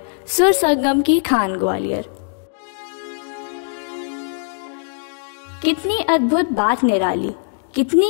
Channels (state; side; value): silent; right; digital silence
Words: सुर संगम की खान ग्वालियर। कितनी अद्भुत बात निराली,